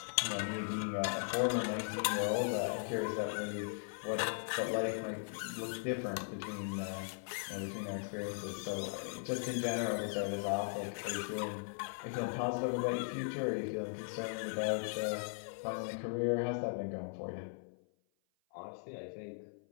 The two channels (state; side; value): silent; right; 52 dB below the other